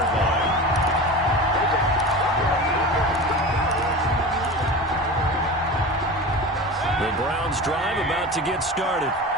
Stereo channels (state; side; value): normal; both; correlation 0.31